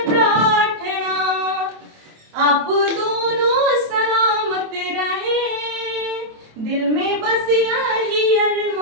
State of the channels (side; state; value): left; late; 27 ms